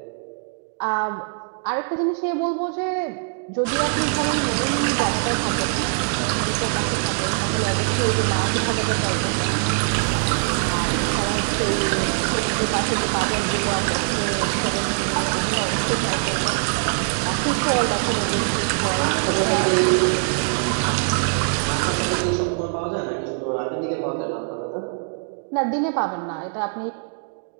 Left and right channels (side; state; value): left; silent; digital silence